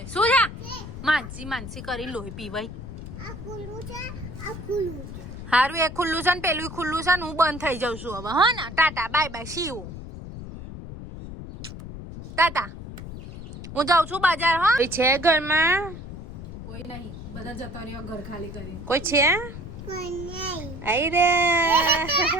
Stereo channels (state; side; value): noise; left; rumble, 11 dB below the sound